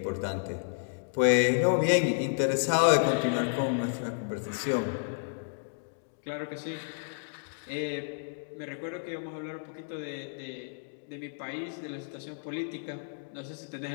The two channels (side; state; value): right; silent; digital silence